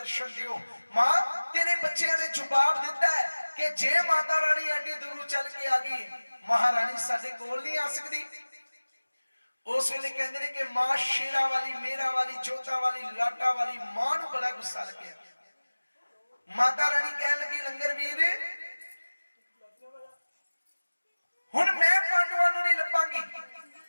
ਦਿਓ ਮਾਂ ਤੇਰੇ ਬੱਚਿਆਂ ਨੇ ਜਵਾਬ ਦਿੱਤਾ ਹੈ ਕਿ ਜੇ ਮਾਤਾ ਰਾਣੀ ਐਡੀ ਦੂਰੋਂ ਚੱਲ ਕੇ ਆ ਗਈ ਮਹਾਰਾਣੀ ਸਾਡੇ ਕੋਲ ਨਹੀਂ ਆ ਸਕਦੀ ਉਸ ਵੇਲੇ ਕਹਿੰਦੇ ਨੇ ਕਿ ਮਾਂ ਸ਼ੇਰਾਂ ਵਾਲੀ ਮੇਰਾ ਵਾਲੀ ਜੋਤਾ ਵਾਲੀ ਲਾਟਾ ਵਾਲੀ ਮਾਂ ਨੂੰ ਬੜਾ ਗੁੱਸਾ ਲੱਗਿਆ ਮਾਤਾ ਰਾਣੀ ਕਹਿਣ ਲੱਗੀ ਲੰਗਰ ਵੀਰ ਹੁਣ ਮੈਂ ਪਾਂਡਵਾਂ ਨੂੰ ਨਹੀਂ ਲੱਭਾਂਗੀ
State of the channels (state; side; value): inverted; both; correlation -1.00